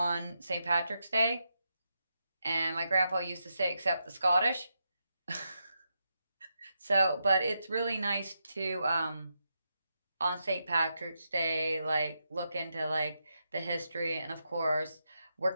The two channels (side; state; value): both; inverted; correlation -0.84